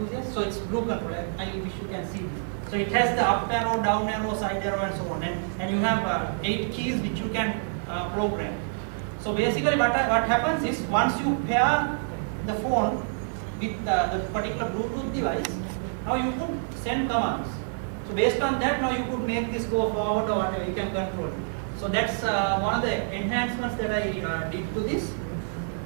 So it's Blue Control. I wish you can see this. So it has the up arrow, down arrow, side arrow, and so on. And you have 8 keys which you can program. So basically what happens is, once you pair the phone with the particular Bluetooth device, now you could send commands. So based on that, now you could make this go forward or whatever, you can control it. So that's one of the enhancements that I did to this.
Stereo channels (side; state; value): left; silent; digital silence